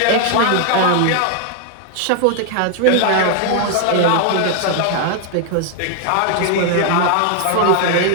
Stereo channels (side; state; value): both; different; correlation 0.00